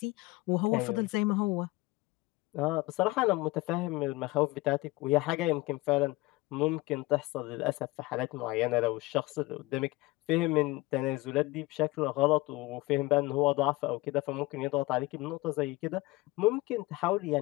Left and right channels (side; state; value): right; quieter; 20.7 dB